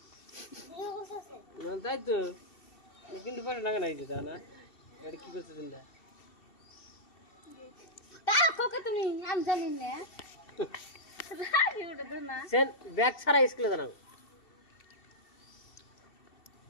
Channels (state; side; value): late; right; 2.7 ms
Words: ভিডিও করতেছে না তাই তো কিন্তু পয়সা লাগে না এই দাদা না এটা কি করছে চিন্তা তা কোকে তুমি আমি জানি না রাখি ওটা তো না সেন ব্যাগ ছাড়া স্কুলে জানাও